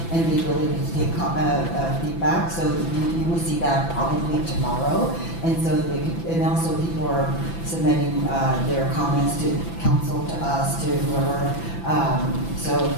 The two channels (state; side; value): late; right; 6.0 ms